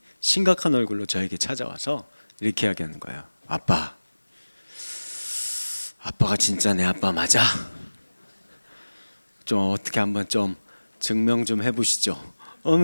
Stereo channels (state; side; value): inverted; both; correlation -1.00